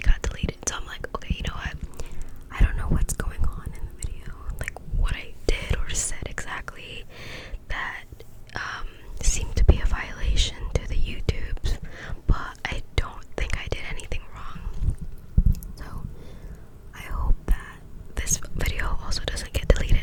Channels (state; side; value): identical; both; correlation 1.00